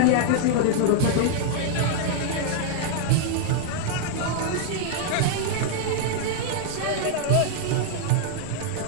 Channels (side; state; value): both; different; correlation -0.01